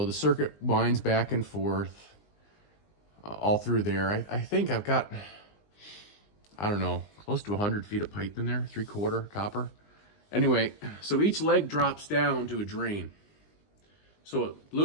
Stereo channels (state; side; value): late; right; 20 ms